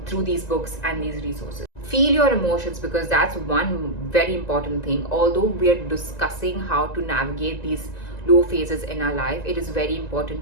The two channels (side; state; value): right; late; 1.9 ms